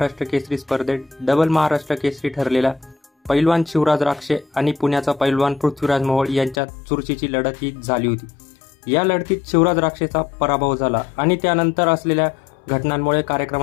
केसरी स्पर्धेत डबल महाराष्ट्र केसरी ठरलेला पैलवान शिवराज राक्षे आणि पुण्याचा पैलवान पृथ्वीराज मोहोळ यांच्यात चुरशीची लढत ही झाली होती। या लढतीत शिवराज राक्षेचा पराभव झाला आणि त्यानंतर असलेल्या घटनांमुळे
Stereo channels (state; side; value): drops out; right; at 6.6 s